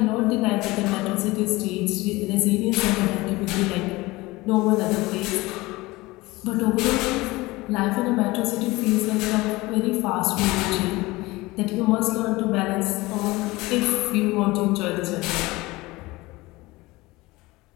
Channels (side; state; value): right; quieter; 21.0 dB